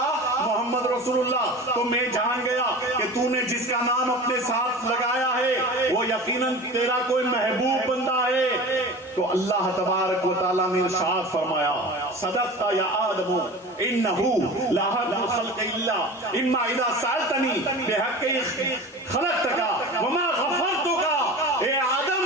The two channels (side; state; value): both; normal; correlation 0.35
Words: محمد رسول اللہ، تو میں جان گیا کہ تو نے جس کا نام اپنے ساتھ لگایا ہے وہ یقیناً تیرا کوئی محبوب بندہ ہے۔ تو اللہ تبارک و تعالیٰ نے ارشاد فرمایا صدقت یا آدم انہو لا حق الخلق الا اما اذا سألتنی بحق خلقتک وما غفرتک۔ اے آدم